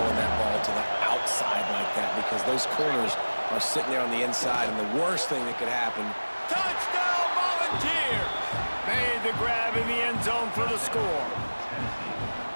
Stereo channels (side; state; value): both; inverted; correlation -1.00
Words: that ball to the outside like that, because those corners are sitting there on the inside, and the worst thing that could happen. Touchdown, Volunteers! Made the grab in the end zone for the score.